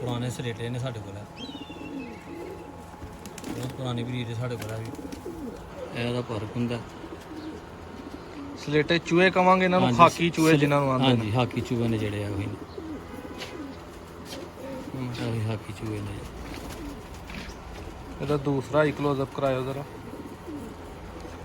ਸਲੇਟੇ ਨੇ ਸਾਡੇ ਕੋਲ, ਬਹੁਤ ਪੁਰਾਣੀ ਬਰੀਡ ਸਾਡੇ ਕੋਲ ਵੀ। ਇਹਦਾ ਫਰਕ ਹੁੰਦਾ। ਸਲੇਟੇ ਚੂਹੇ ਕਵਾਂਗੇ ਇਹਨਾਂ ਨੂੰ, ਖਾਕੀ ਚੂਹੇ ਜਿਨ੍ਹਾਂ ਨੂੰ ਆਉਂਦੇ ਨੇ। ਹਾਂਜੀ, ਹਾਕੀ ਚੂਹੇ ਨੇ ਜਿਹੜੇ ਆ ਉਹੀ ਨੇ, ਉਹੀ ਹਾਕੀ ਚੂਹੇ ਨੇ। ਇਹਦਾ ਦੂਸਰਾ ਹੀ ਕਲੋਜ਼ਅਪ ਕਰਾਇਓ ਜ਼ਰਾ,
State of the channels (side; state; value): both; identical; correlation 1.00